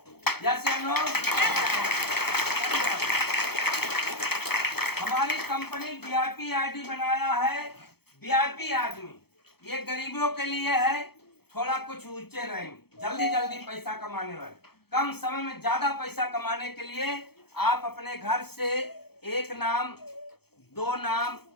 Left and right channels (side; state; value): right; late; 0.96 ms